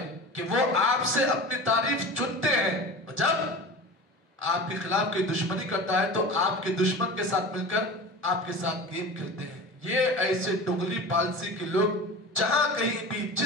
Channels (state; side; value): normal; both; correlation 0.33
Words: کہ وہ آپ سے اپنی تعریف چنتے ہیں، جب آپ کے خلاف کوئی دشمنی کرتا ہے تو آپ کے دشمن کے ساتھ مل کر آپ کے ساتھ گیم کھیلتے ہیں۔ یہ ایسے ڈغلی پالسی کے لوگ جہاں کہیں بھی،